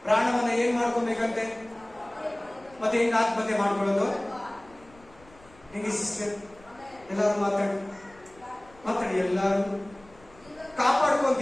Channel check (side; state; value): left; noise; rumble, 26 dB below the sound